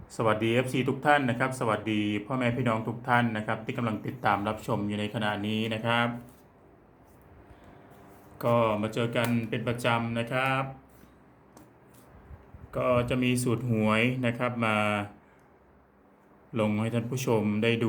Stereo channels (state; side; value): identical; both; correlation 1.00